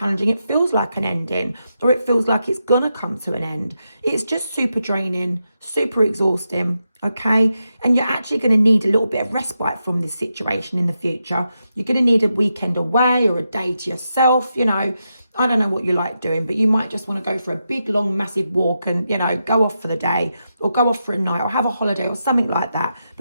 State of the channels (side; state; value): both; inverted; correlation -0.86